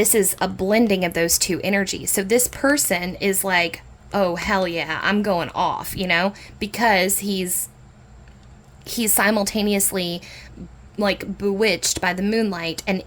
is a blending of those two energies. So this person is like, oh, hell yeah, I'm going off, because he's simultaneously bewitched by the moonlight and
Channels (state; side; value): identical; both; correlation 1.00